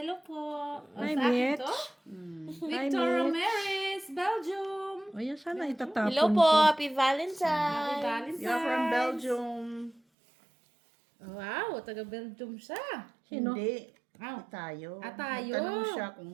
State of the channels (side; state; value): left; drops out; at 10.0 s